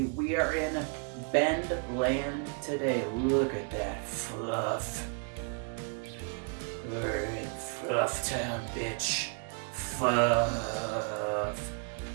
We are in Bend land today. Look at that fluff. We're in Fluff Town, bitch. Fluff.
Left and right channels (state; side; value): quieter; left; 39.9 dB